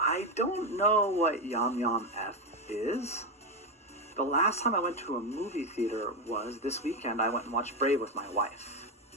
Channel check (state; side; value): normal; both; correlation 0.10